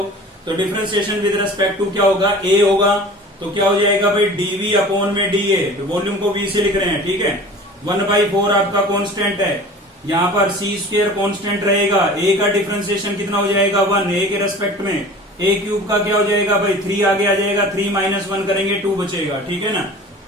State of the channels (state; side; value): normal; both; correlation 0.41